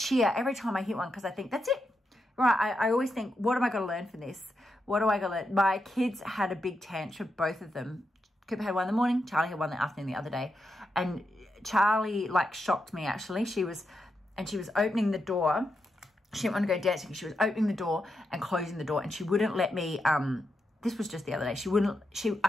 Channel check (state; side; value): normal; both; correlation 0.85